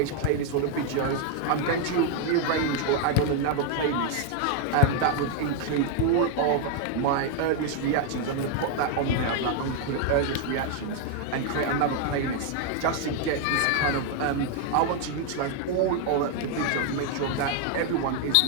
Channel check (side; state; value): both; different; correlation 0.00